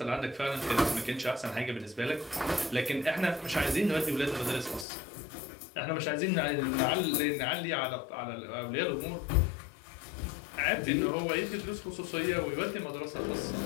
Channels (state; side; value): drops out; right; at 4.9 s